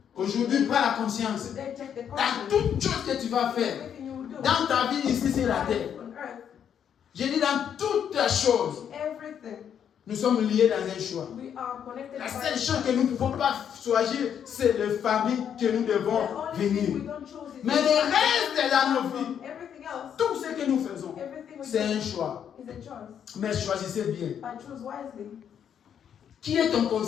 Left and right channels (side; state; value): right; quieter; 8.6 dB